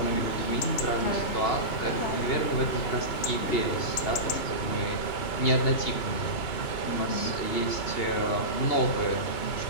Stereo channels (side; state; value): right; late; 2.9 ms